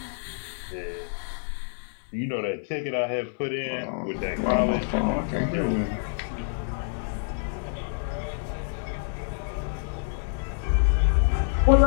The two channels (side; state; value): right; silent; digital silence